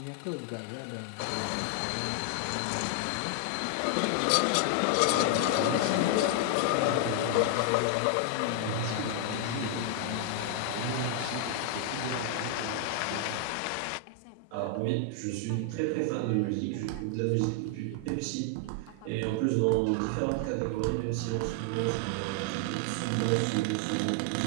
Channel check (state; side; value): different; both; correlation 0.00